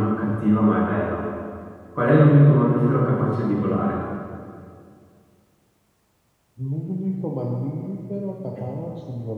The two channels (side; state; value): both; identical; correlation 1.00